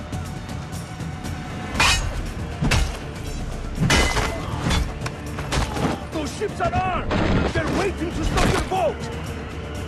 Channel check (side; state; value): both; identical; correlation 1.00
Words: Those ships are armed! They're waiting to stop your boat!